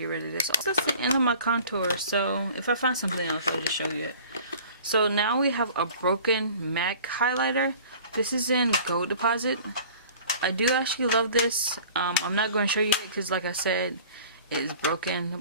rid of this. That's the end of my contour. So if I find something else, I'll just show you it. So now we have a broken MAC highlighter. This is in Gold Deposit. I do actually love this. I'm not going to show you it because, like I said, it is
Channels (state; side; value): inverted; both; correlation -0.46